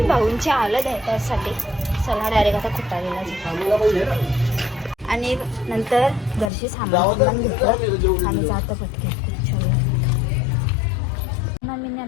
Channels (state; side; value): drops out; right; at 6.5 s